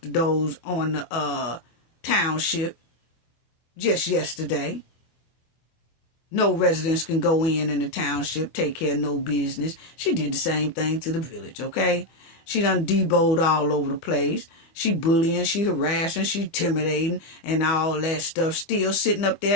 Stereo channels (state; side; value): late; right; 25 ms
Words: the doors on the township just yesterday. No residents can go in the township, take care of no business. She did the same thing to the village, okay? She done deboed all over the place. She bullying, she harassing, she intimidating, and all that stuff. Still sitting up